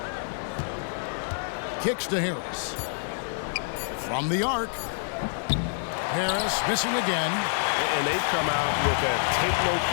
Kicks to Harris. From the arc. Harris missing again. And they've come out with a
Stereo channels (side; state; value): right; silent; digital silence